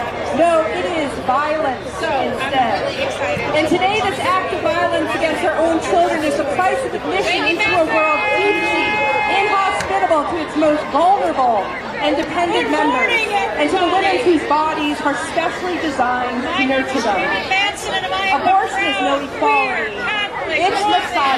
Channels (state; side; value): identical; both; correlation 1.00